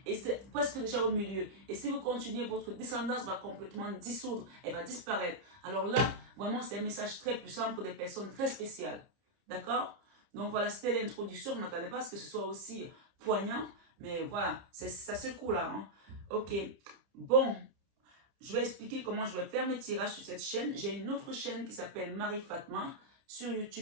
et c'est presque déjà au milieu. Et si vous continuez, votre descendance va complètement dissoudre, elle va disparaître. Alors là, vraiment, c'est un message très puissant pour des personnes très spéciales. D'accord? Donc voilà, c'était l'introduction. Je ne m'attendais pas à ce que ce soit aussi poignant. Mais voilà, ça secoue là. Hein. Ok. Bon, je vais expliquer comment je vais faire mes tirages sur cette chaîne. J'ai une autre chaîne qui s'appelle Marie Fatma. Sur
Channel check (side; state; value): left; late; 30 ms